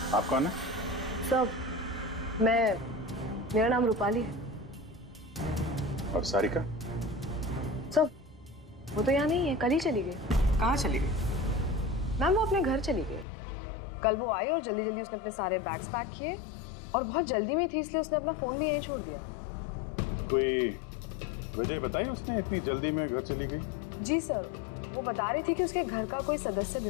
आप कौन है? सब, मेरा नाम रूपाली है। और सारिका? सब, वो तो यहाँ नहीं है, कल ही चली गई। कहाँ चली गई? मैम वो अपने घर चली गई। कल वो आई और जल्दी जल्दी उसने अपने सारे बैग्स पैक किए, और बहुत जल्दी में थी इसलिए उसने अपना फोन भी यहीं छोड़ दिया। कोई वजह बताई उसने इतनी जल्दी में घर चली गई? जी सर, वो बता रही थी कि उसके घर का कोई सदस्य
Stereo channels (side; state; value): right; drops out; at 13.2 s